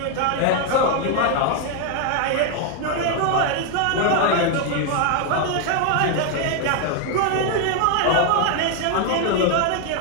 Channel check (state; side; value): different; both; correlation 0.00